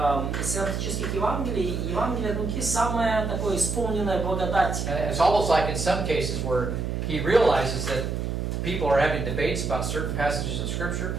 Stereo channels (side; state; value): right; noise; hum, 2 dB below the sound